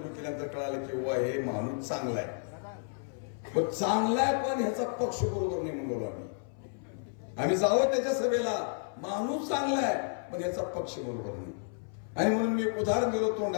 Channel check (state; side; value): silent; right; 57 dB below the other